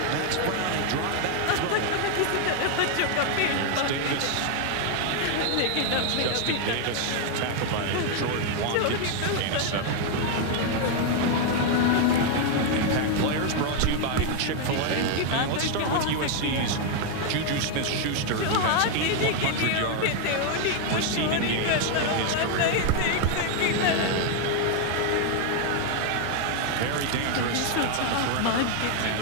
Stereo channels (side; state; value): both; different; correlation 0.00